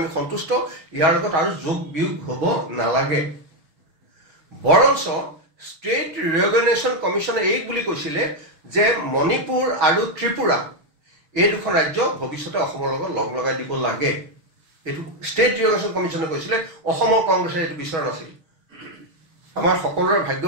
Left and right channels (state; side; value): late; left; 6.2 ms